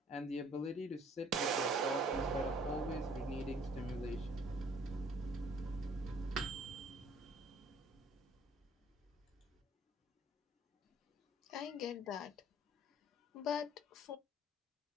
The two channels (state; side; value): normal; both; correlation 0.58